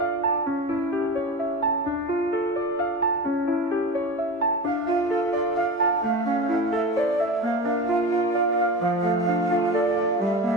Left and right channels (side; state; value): both; normal; correlation 0.28